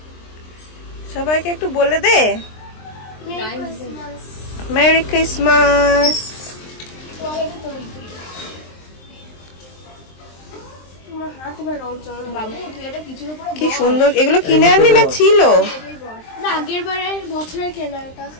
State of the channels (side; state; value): right; late; 23 ms